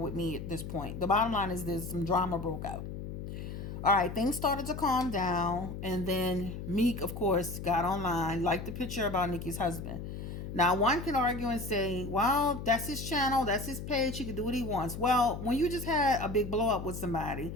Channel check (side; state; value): left; noise; hum, 8 dB below the sound